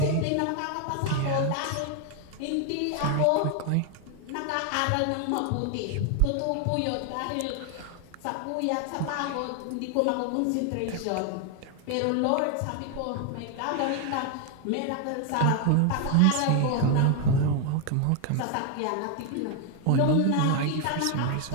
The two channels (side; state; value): both; different; correlation 0.01